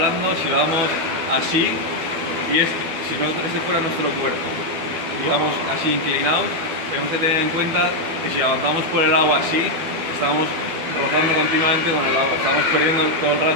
si vamos así, y si no este fuera nuestro cuerpo, y vamos así inclinados, tenemos que tener en cuenta que si avanzamos por el agua así, estamos rozando continuamente con el agua, estamos perdiendo todo el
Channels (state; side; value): late; left; 12 ms